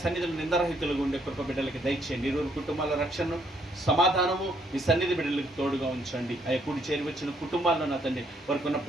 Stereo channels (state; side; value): normal; both; correlation 0.70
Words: సన్నిధిలో నిందరహితులుగా ఉండే కృప బిడ్డలకి దయచేయండి. ఇరువురు కుటుంబాల రక్షణను, సమాధానము మీ సన్నిధి బిడ్డలకు తోడుగా ఉంచండి. అయ్యా కూడి చేరి వచ్చిన కుటుంబాల్లో నా తండ్రి వారికి ఉన్న